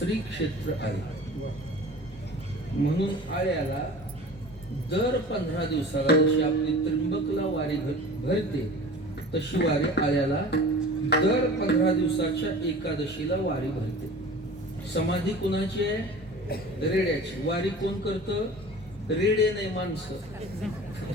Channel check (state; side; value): normal; both; correlation 0.40